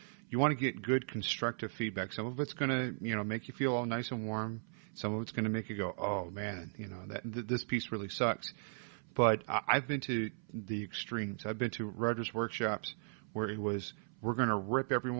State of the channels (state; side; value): silent; left; 53 dB below the other